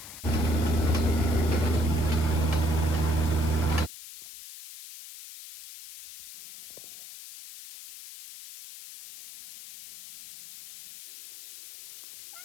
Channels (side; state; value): left; noise; hiss, 15 dB below the sound